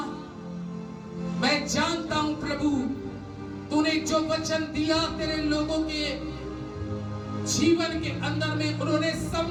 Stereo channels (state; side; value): identical; both; correlation 1.00